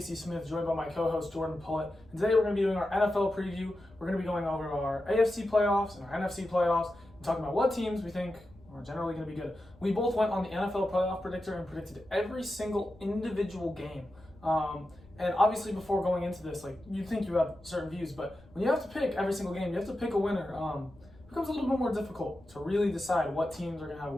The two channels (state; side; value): noise; left; rumble, 25 dB below the sound